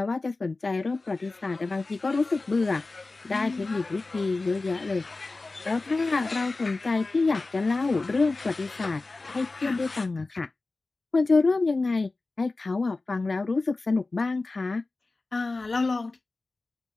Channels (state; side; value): quieter; right; 3.4 dB